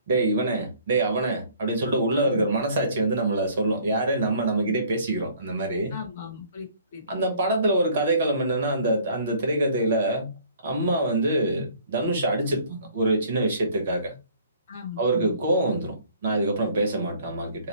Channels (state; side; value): inverted; both; correlation -0.56